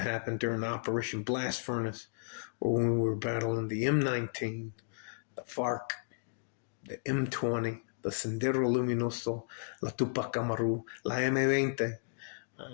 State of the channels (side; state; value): right; silent; digital silence